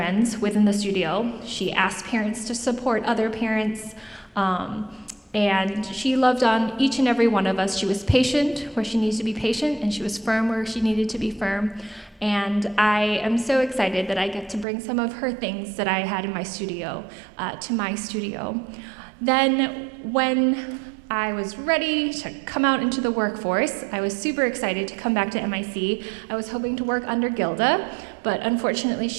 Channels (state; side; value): drops out; left; at 14.7 s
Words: within the studio. She asked parents to support other parents. And she loved on each and every one of us. She was patient where she needs to be patient, and she was firm where she needed to be firm. And I am so excited that I get to bring some of her things that I had in my studio to my studio. Then when I was ready to come out into the workforce, I was super excited to come back to MIC. I was hoping to work under Gilda, but unfortunately